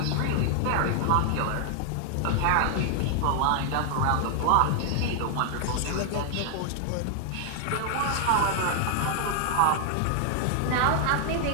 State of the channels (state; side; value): different; both; correlation 0.00